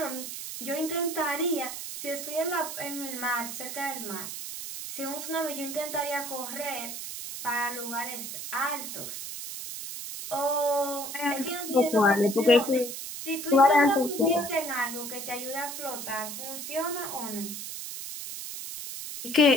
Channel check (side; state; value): right; noise; hiss, 7 dB below the sound